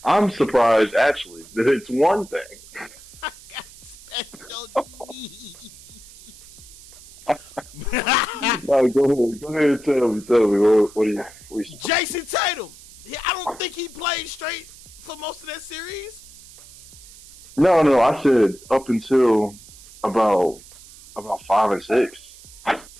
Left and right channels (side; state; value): right; noise; hiss, 20 dB below the sound